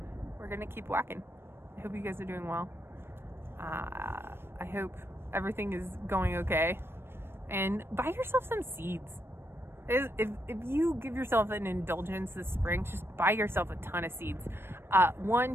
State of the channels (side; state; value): left; late; 0.11 ms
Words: we're gonna keep walking. I hope you guys are doing well. I hope everything is going okay. And buy yourself some seeds. If you give yourself an indulgence this spring, just buy yourself a ton of seeds. One